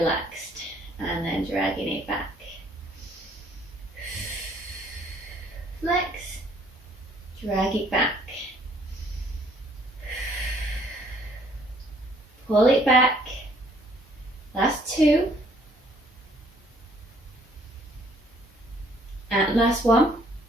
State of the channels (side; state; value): both; normal; correlation 0.62